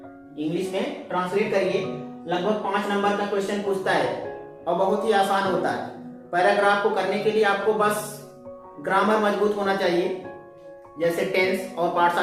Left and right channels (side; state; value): both; identical; correlation 1.00